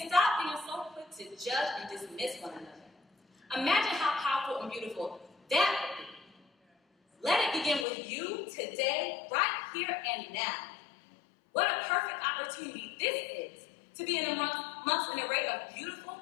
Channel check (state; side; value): drops out; right; at 7.9 s